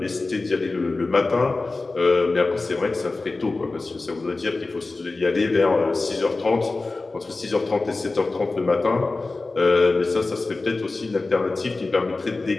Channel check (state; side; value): quieter; right; 3.5 dB